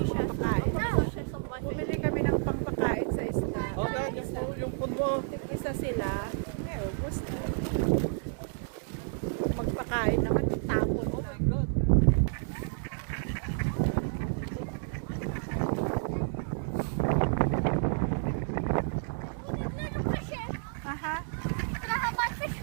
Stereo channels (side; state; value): left; silent; digital silence